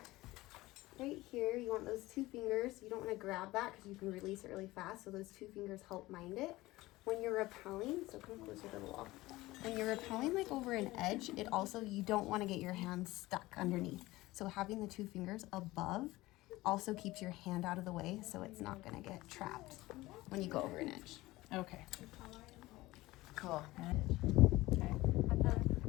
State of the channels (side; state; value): right; quieter; 18.8 dB